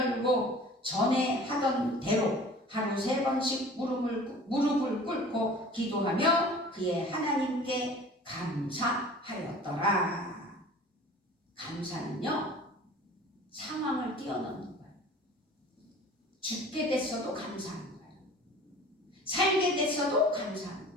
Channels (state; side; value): normal; both; correlation 0.44